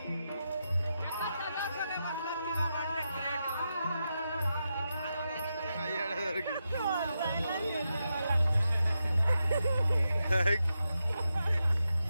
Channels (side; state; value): both; inverted; correlation -0.87